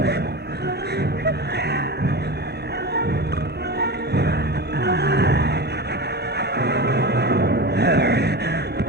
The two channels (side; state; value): both; normal; correlation 0.26